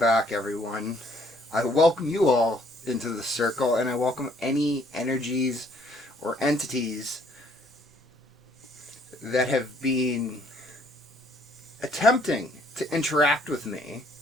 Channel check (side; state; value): both; normal; correlation 0.64